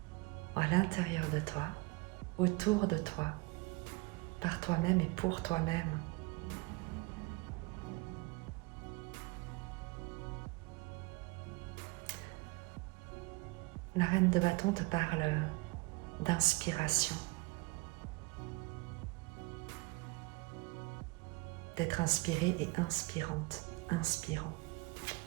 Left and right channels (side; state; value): left; quieter; 25.3 dB